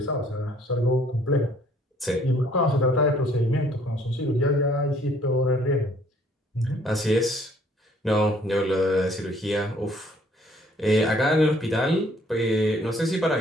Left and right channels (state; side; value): normal; both; correlation 0.61